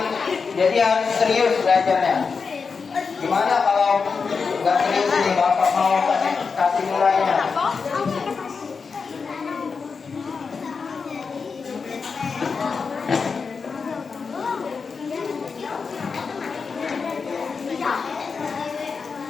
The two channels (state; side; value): quieter; right; 5.2 dB